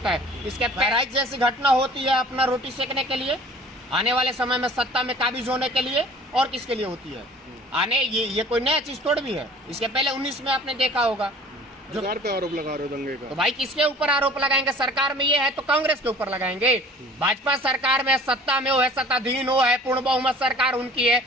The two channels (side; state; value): both; normal; correlation 0.48